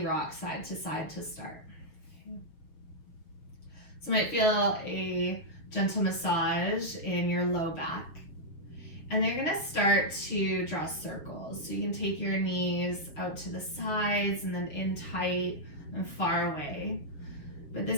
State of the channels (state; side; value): late; right; 6.5 ms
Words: rock side to start. So you might feel a gentle massage in your low back. And they're gonna start to draw circles. So you can take your knees out to the sides and then in tight and far away. But